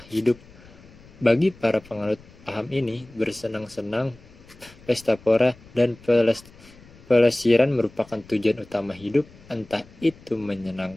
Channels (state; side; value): noise; left; rumble, 23 dB below the sound